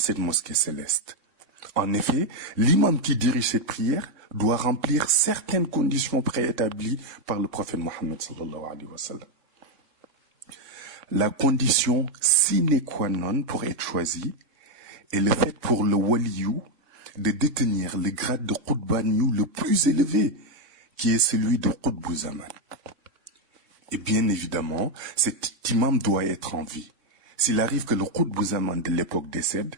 mosquée céleste. En effet, l'imam qui dirige cette prière doit remplir certaines conditions préétablies par le prophète Mohammed sallallahu alayhi wa sallam. La condition sine qua non pour être choisi est le fait pour le waliyou de détenir le grade de Qutbaniou le plus élevé, qui est celui de Qutb Zaman. Et bien évidemment, cet imam doit être en vie. S'il arrive que le Qutb Zaman de l'époque décède,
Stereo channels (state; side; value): late; left; 3.6 ms